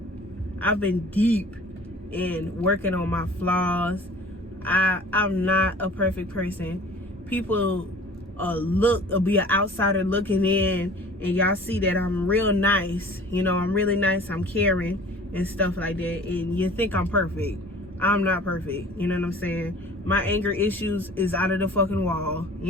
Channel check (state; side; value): normal; both; correlation 0.46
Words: I've been deep in working on my flaws. I'm not a perfect person. People be an outsider looking in, and y'all see that I'm real nice. You know, I'm really nice. I'm caring and stuff like that. And you think I'm perfect. I'm not perfect. You know what I'm saying? My anger issues is out of the fucking wall.